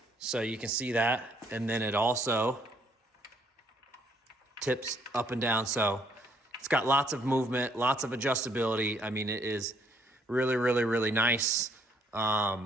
So you can see that. And then it also tips up and down. So it's got lots of movement, lots of adjustability. I mean, it is really, really, really nice.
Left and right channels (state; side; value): normal; both; correlation 0.67